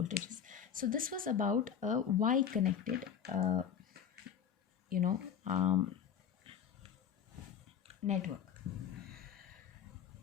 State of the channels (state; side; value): quieter; right; 8.3 dB